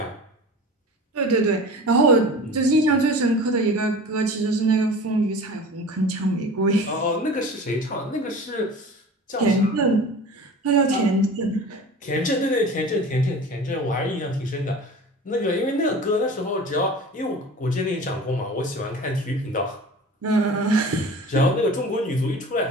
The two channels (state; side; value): normal; both; correlation 0.38